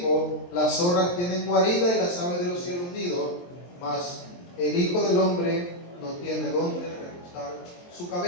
las zorras tienen guarida y las aves de los cielos nido, mas el Hijo del Hombre no tiene dónde recostar su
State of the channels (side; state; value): right; late; 23 ms